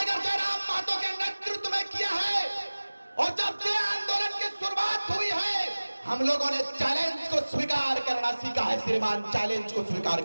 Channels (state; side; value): inverted; both; correlation -1.00